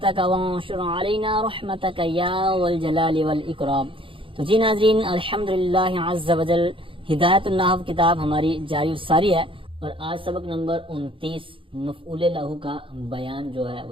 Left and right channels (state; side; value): late; left; 0.25 ms